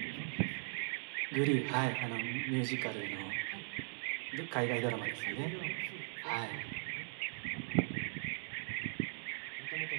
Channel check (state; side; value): silent; left; digital silence